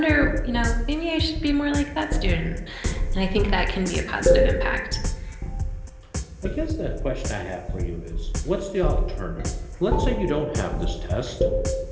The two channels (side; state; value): both; identical; correlation 1.00